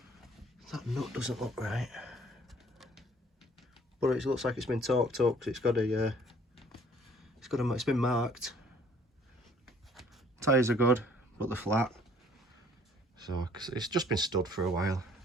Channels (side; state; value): both; normal; correlation 0.58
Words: That nut doesn't look right, but it looks like it's been torqued up because it's been marked. Tyres are good, but they're flat. So it's just been stood for a while.